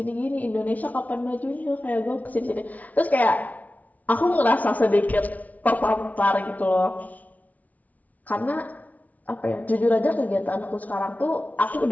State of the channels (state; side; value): late; right; 0.073 ms